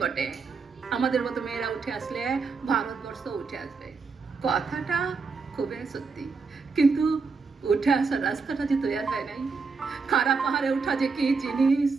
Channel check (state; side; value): quieter; left; 4.7 dB